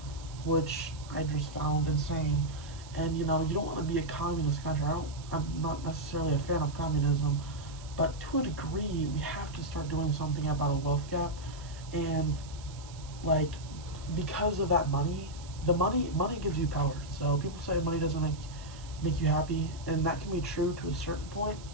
which I just found insane. And you know, you don't want to be a communist country. I'm not necessarily a fan of communism, but to a degree we have to start doing something about a wealth gap. And like, because of that money, the money gives you power. So people say money doesn't make you happy, and that can be true to a certain point,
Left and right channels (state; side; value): noise; right; hiss, 19 dB below the sound